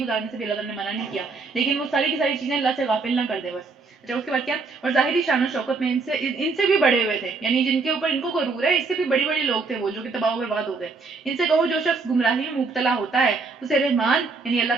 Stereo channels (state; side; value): quieter; left; 4.2 dB